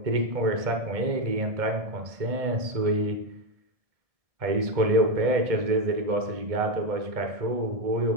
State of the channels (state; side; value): late; left; 1.7 ms